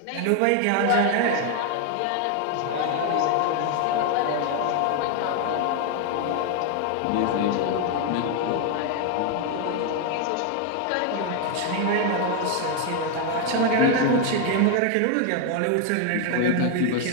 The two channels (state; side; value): different; both; correlation 0.01